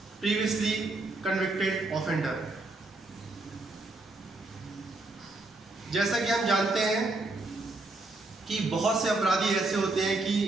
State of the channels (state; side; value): quieter; left; 3.0 dB